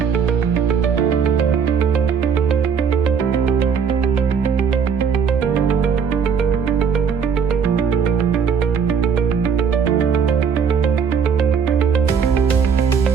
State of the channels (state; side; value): quieter; left; 6.6 dB